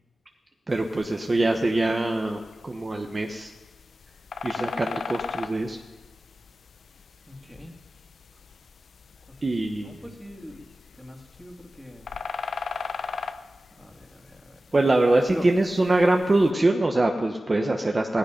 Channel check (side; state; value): both; normal; correlation 0.96